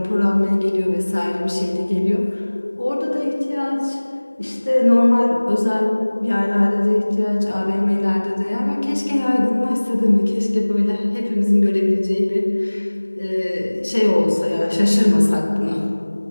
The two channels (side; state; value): both; inverted; correlation -1.00